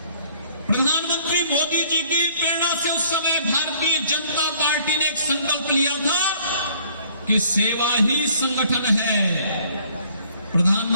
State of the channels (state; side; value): inverted; both; correlation -0.58